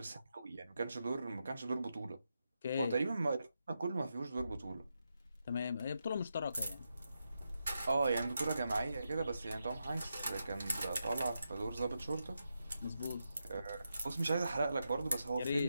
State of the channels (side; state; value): both; inverted; correlation -0.86